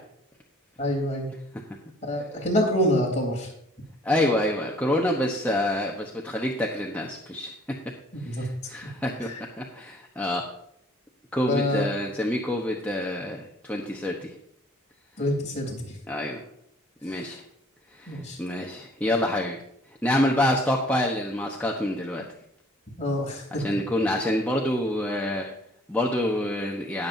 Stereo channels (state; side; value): normal; both; correlation 0.57